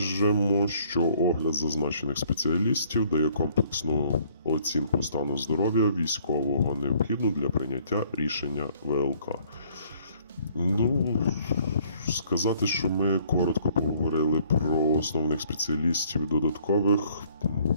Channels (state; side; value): inverted; both; correlation -0.61